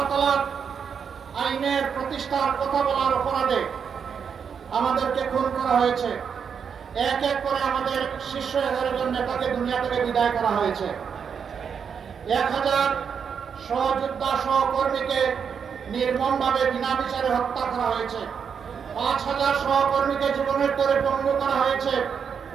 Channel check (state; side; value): quieter; left; 6.8 dB